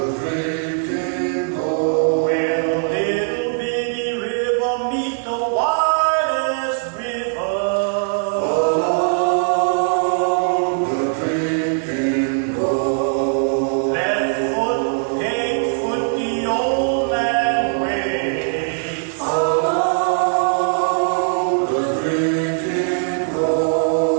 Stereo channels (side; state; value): left; silent; digital silence